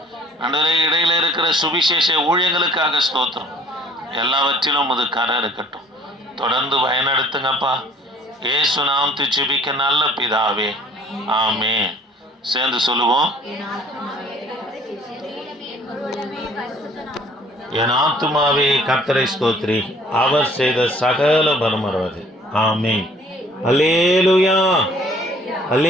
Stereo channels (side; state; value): both; normal; correlation 0.55